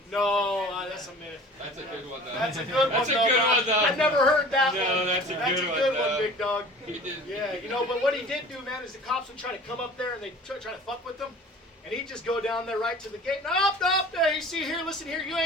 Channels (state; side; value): normal; both; correlation 0.43